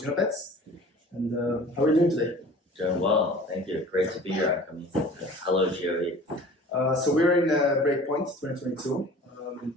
Genopets. And how are you doing today? Doing well, thank you. Great to be here, UnKami. Hello, GOE. So we're in Breakpoint 2022.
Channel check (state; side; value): normal; both; correlation 0.44